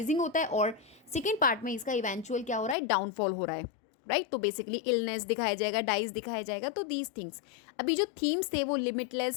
होता है और सेकेंड पार्ट में इसका इवेंचुअल क्या हो रहा है, डाउनफॉल हो रहा है, राइट? तो बेसिकली इलनेस दिखाया जाएगा, डाइज दिखाया जाएगा। तो दीज थिंग्स अभी जो थीम्स थे वो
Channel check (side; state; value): right; drops out; at 2.8 s